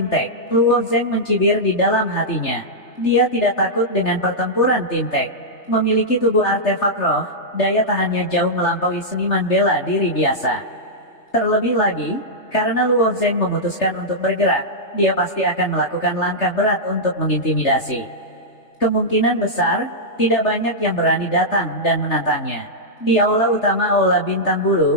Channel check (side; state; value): right; late; 3.3 ms